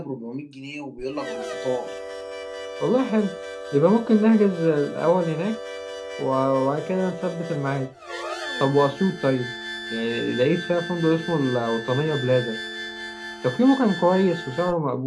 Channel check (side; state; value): both; identical; correlation 1.00